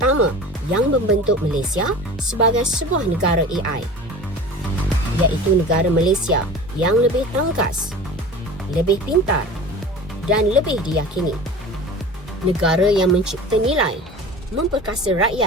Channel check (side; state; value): both; normal; correlation 0.37